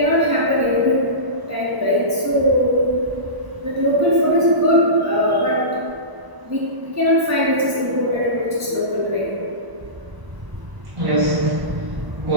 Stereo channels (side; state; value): left; late; 1.0 ms